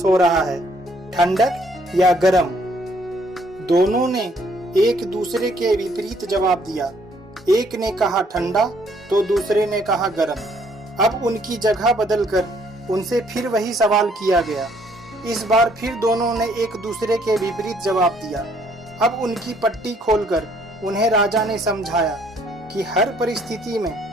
हो रहा है, ठंडक या गर्म। दोनों ने एक दूसरे के विपरीत जवाब दिया। एक ने कहा ठंडा तो दूसरे ने कहा गर्म। अब उनकी जगह बदलकर उनसे फिर वही सवाल किया गया। इस बार फिर दोनों ने एक दूसरे के विपरीत जवाब दिया। अब उनकी पट्टी खोलकर उन्हें राजा ने समझाया कि हर परिस्थिति में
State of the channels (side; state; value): both; normal; correlation 0.65